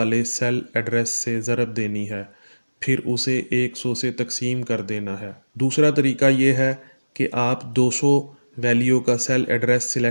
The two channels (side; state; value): both; inverted; correlation -1.00